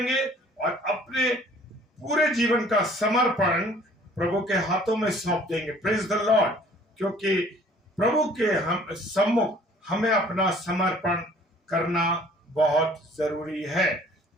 और अपने पूरे जीवन का समर्पण प्रभु के हाथों में सौंप देंगे। प्रेज द लॉर्ड, क्योंकि प्रभु के हम सम्मुख हमें अपना समर्पण करना बहुत जरूरी है,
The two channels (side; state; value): both; normal; correlation 0.54